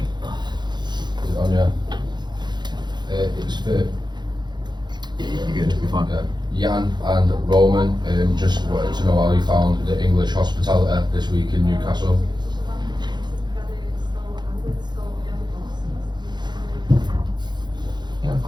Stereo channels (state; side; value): late; left; 0.21 ms